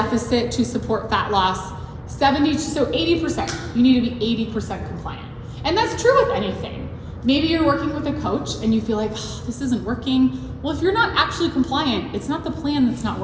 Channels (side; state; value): both; identical; correlation 1.00